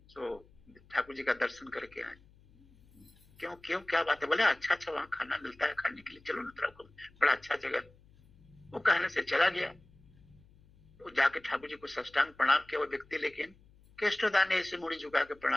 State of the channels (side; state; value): left; noise; hum, 27 dB below the sound